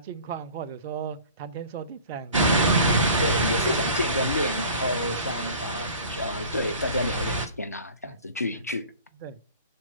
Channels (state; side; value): inverted; both; correlation -0.43